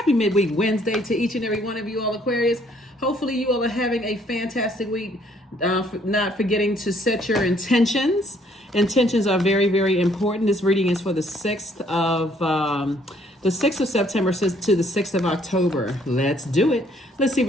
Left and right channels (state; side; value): normal; both; correlation 0.64